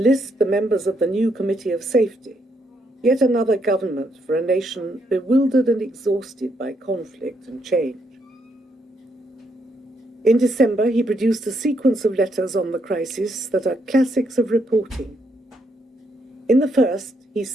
the members of the new Committee of Safety, yet another government for a nation bewildered and exhausted by conflict and change. In December, he produced a sequence of letters on the crisis that are classics of reporting. In the first, he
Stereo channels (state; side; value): normal; both; correlation 0.76